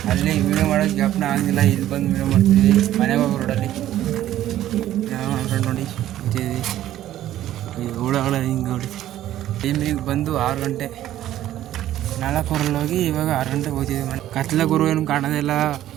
ಅಲ್ಲಿ ವೀಡಿಯೋ ಮಾಡೋಕ್ಕೆ ಜ್ಞಾಪನ ಆಗಿಲ್ಲ. ಇಲ್ಲಿ ಬಂದು ವೀಡಿಯೋ ಮಾಡ್ತೀವಿ ಮನೆಗೆ ಹೋಗೋ ರೋಡಲ್ಲಿ. ನಾವು ನನ್ನ ಫ್ರೆಂಡ್ ನೋಡಿ ಇದ್ದೀವಿ. ಈ ಹುಳಗಳ ಹಿಂಗೆ ಹೊಡಿ ಟೈಮಿಗೆ ಬಂದು 6 ಗಂಟೆ 4 ಹೋಗಿ ಇವಾಗ 6 ಗಂಟೆಗೆ ಹೋಗ್ತಿದ್ವಿ ಮನೆ. ಕತ್ಲ ಗುರು ಏನು ಕಾಣೋದಿಲ್ಲ,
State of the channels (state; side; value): quieter; left; 12.9 dB